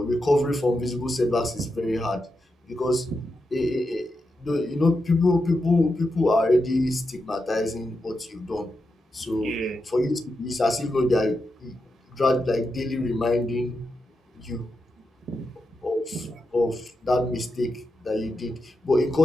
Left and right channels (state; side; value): normal; both; correlation 0.87